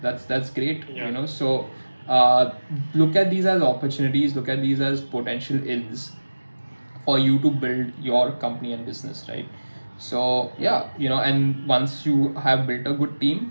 That's great. So look at these as opportunities, look at these as potential ins for you to build your company and business, right? So yeah, and once you have built a good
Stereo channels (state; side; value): inverted; both; correlation -1.00